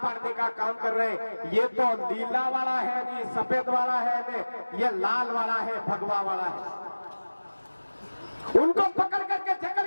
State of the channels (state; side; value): inverted; both; correlation -1.00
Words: पाड़ने का काम कर रहे हैं। ये तो नीला वाला है नहीं, सफेद वाला है नहीं, ये लाल वाला है, भगवा वाला है। उनको पकड़ करके जकड़